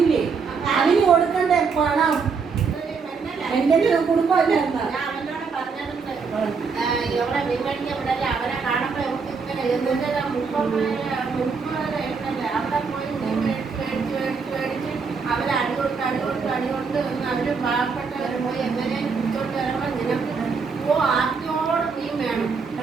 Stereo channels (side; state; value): left; quieter; 5.2 dB